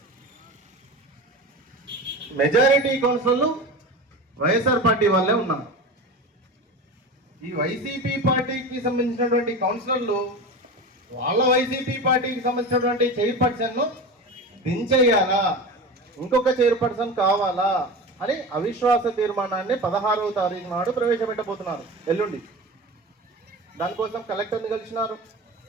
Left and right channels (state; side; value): normal; both; correlation 0.29